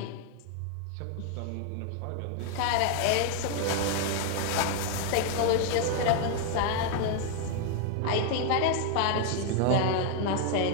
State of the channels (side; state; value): both; different; correlation 0.00